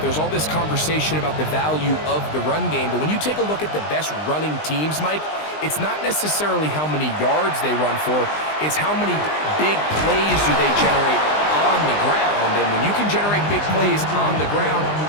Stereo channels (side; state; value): right; late; 20 ms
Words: all this conversation about the value of the run game, but when you take a look at the best running teams, Mike, it's not necessarily how many yards they run for, it's how many big plays do they generate on the ground. And when you can generate big plays on the ground,